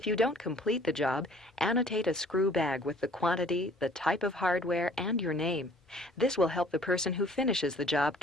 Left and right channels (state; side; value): normal; both; correlation 0.54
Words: you don't complete the job, annotate a screw bag with the quantity, the type of hardware, and your name. This will help the person who finishes the job